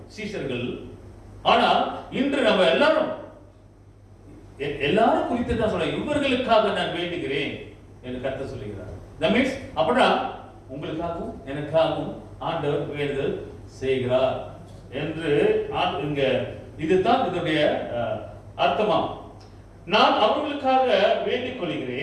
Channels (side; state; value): both; identical; correlation 1.00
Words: சீஷர்கள். ஆனா இன்று நம்ம எல்லாரும் குறித்து தான் சொல்ல, இவர்களுக்காக நான் வேண்டுகிறேன் என்று கர்த்தர் சொல்லுகிறார். that means அப்படினா உங்களுக்காகவும் எனக்காகவும் ஆண்டவர் வேண்டுதல் செய்கிறார் என்று இங்க இதுதான் இதனுடைய அர்த்தமா. நான் அவர்களுக்காக வேண்டிக்